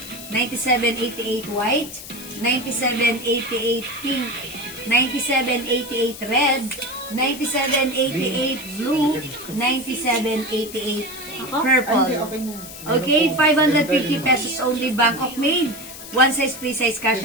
9788 white, 9788 pink, 9788 red, 9788 blue, 9788 purple. Okay na. Okay, 550 pesos only, Bangkok made. One size, free size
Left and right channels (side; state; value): left; noise; hiss, 13 dB below the sound